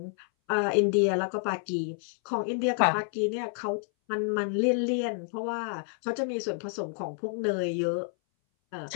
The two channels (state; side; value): silent; right; 58 dB below the other